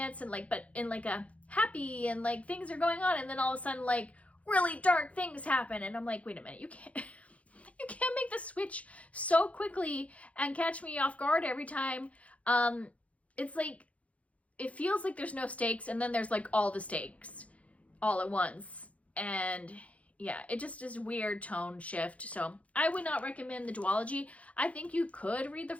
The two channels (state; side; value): late; right; 0.065 ms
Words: and like, but in like a happy, and like things are going on, and then all of a sudden like really dark things happen, and I'm like, wait a minute, you can't you can't make the switch so quickly and catch me off guard every time. It's like, it feels like there's no stakes, and then there's like all the stakes all at once. And yeah, it just is weird tone shift. So I would not recommend the duology. I think you could read the